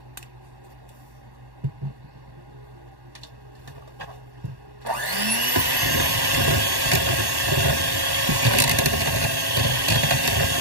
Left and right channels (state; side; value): late; left; 1.1 ms